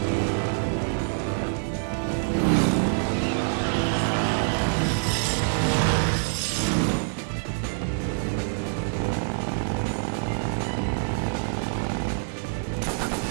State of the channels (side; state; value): left; silent; digital silence